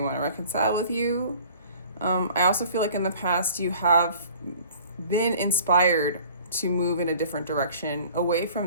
to reconcile with you. I also feel like in the past, you have been inspired to move in a different direction, away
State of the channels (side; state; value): both; inverted; correlation -0.49